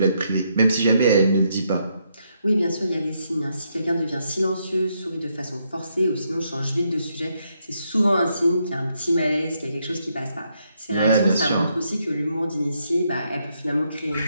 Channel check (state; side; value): inverted; both; correlation -0.77